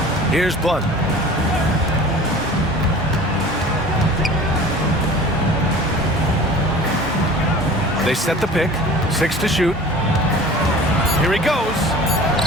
Here's Blunt. They set the pick. 6 to shoot. Here he goes.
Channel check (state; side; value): normal; both; correlation 0.42